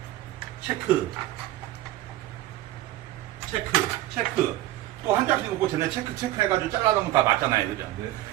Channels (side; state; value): left; quieter; 15.4 dB